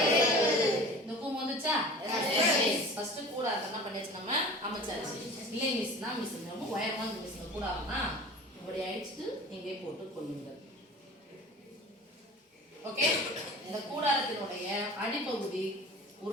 இந்த கூம்பு வந்துச்சா? ஃபர்ஸ்ட் கூடாரம் என்ன பண்ணியாச்சு நம்ம அமைச்சாச்சு. இல்லை மிஸ்னா மிஸ் நம்ம உயரமா மிஸ் கூடாரம்னா இப்படி அடிச்சுட்டு இங்கே போட்டு கொள்ளுங்கள். ஓகே? இந்த கூடாரத்தினுடைய அடிப்பகுதி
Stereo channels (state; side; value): normal; both; correlation 0.40